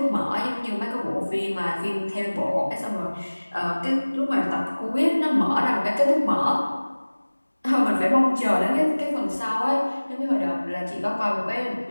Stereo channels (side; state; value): both; inverted; correlation -1.00